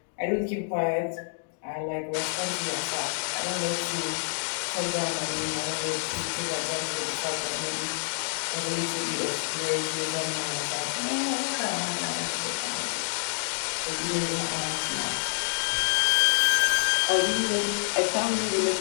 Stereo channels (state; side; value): silent; right; digital silence